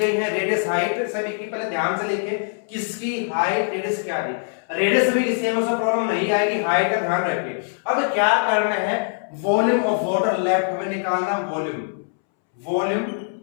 है, रेडियस हाइट सभी की, पहले ध्यान से लिखिए किसकी हाइट रेडियस क्या दी, रेडियस सभी की सेम, उसका प्रॉब्लम नहीं आएगी, हाइट का ध्यान रखिए। अब क्या करना है, वॉल्यूम ऑफ वाटर लेफ्ट हमें निकालना, volume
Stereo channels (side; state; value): right; silent; 64 dB below the other